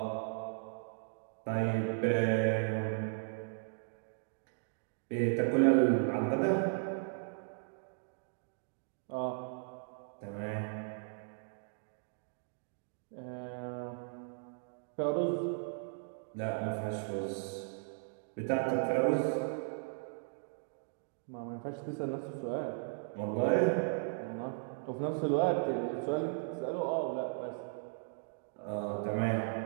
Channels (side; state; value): left; silent; digital silence